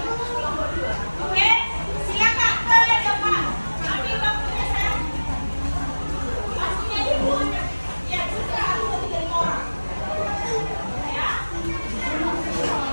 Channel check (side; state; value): both; inverted; correlation -1.00